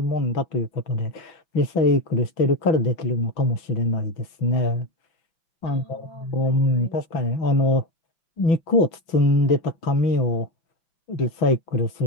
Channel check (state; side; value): late; right; 6.0 ms